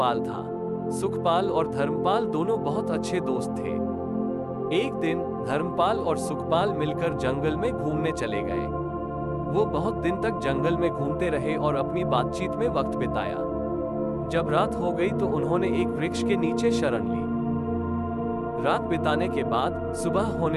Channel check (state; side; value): identical; both; correlation 1.00